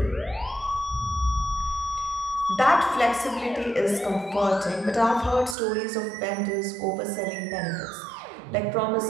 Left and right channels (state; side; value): drops out; left; at 5.6 s